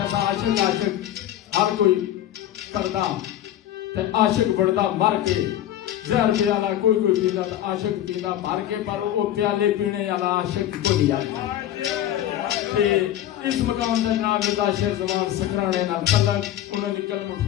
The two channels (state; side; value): quieter; right; 12.2 dB